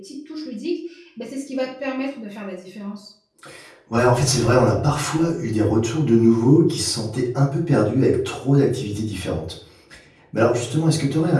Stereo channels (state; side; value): identical; both; correlation 1.00